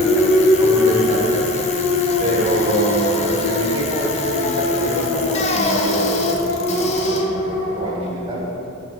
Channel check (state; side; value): normal; both; correlation 0.34